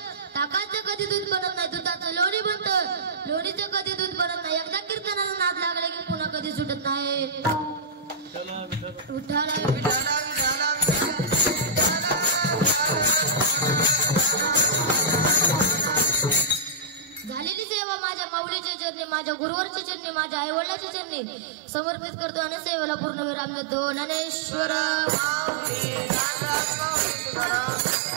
ताकाचं कधी दूध बनत नाही दुधाचं लोणी बनतं लोणीचं कधी दूध बनत नाही एकदा कीर्तनाला नाद लागले की पुन्हा कधी सुटत नाही विठ्ठला विठ्ठला झालेली सेवा माझ्या माऊलीच्या चरणी माझ्या गुरुवरच्या चरणी माझ्या आई वडिलांच्या चरणी समर्पित करतो आणि सेवेला पूर्ण विराम देतो ज्ञानेश्वर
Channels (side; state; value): left; drops out; at 17.7 s